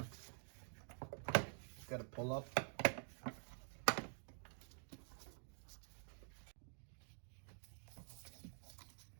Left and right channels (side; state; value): left; silent; digital silence